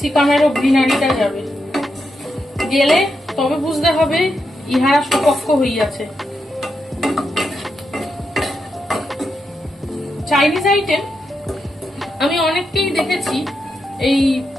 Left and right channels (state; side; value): normal; both; correlation 0.84